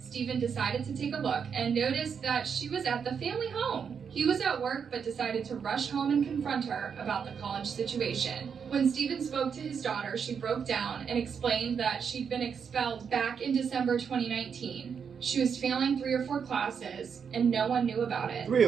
decided to take a look and noticed that she was at the family home. He was at work but decided to rush home and confront her about the college situation. When Stephen spoke to his daughter, she broke down and explained that she'd been expelled back in December 2019. She was failing 3 or 4 classes, and no one knew about it. 3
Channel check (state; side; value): quieter; left; 6.8 dB